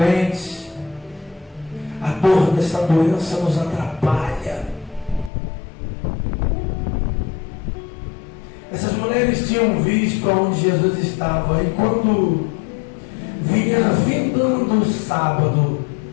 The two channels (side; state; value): right; drops out; at 5.3 s